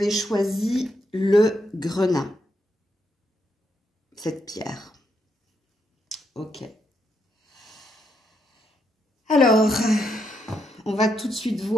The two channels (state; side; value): normal; both; correlation 0.79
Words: choisi le grenat. Cette pierre. Ok. Alors... on va tout de suite